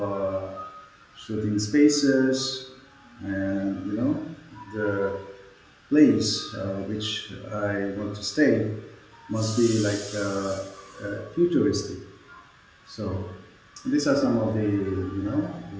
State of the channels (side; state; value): both; identical; correlation 1.00